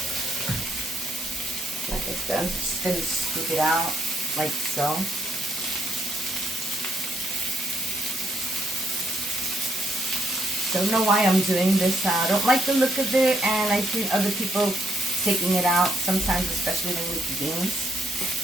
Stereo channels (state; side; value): normal; both; correlation 0.73